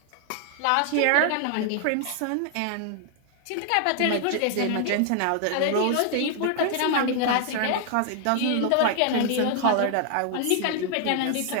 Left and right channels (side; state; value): both; different; correlation 0.00